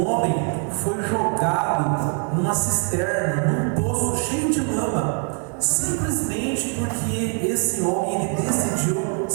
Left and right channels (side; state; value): left; quieter; 37.8 dB